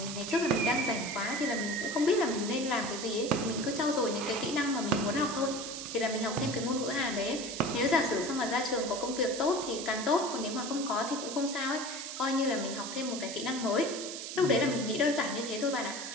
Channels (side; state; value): right; noise; hiss, 7 dB below the sound